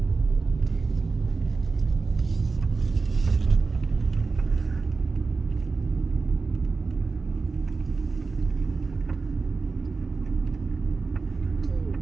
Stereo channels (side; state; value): left; quieter; 4.2 dB